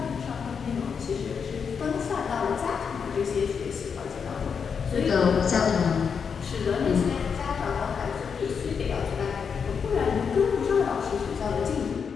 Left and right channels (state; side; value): quieter; right; 6.4 dB